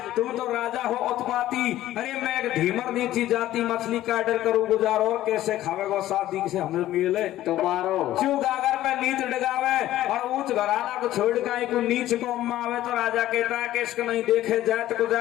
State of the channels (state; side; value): quieter; right; 14.1 dB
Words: तुम तो राजा हो उत्पाती अरे मैं एक धीमर नीची जाती मछली का ऑर्डर करूँ गुजारो कैसे खावेगो शादी से हमें मिले तुम्हारो क्यों गागर में नीच डगावे और ऊंच घराना को छोड़ के को नीच को आवे तो राजा कहता है कि इसको नहीं देखे जात को